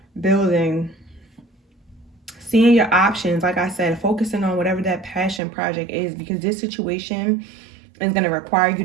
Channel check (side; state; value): left; drops out; at 5.4 s